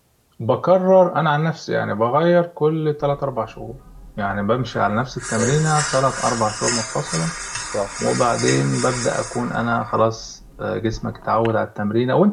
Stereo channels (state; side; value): identical; both; correlation 1.00